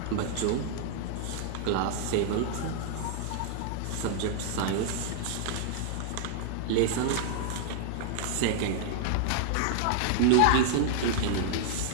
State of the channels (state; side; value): different; both; correlation -0.01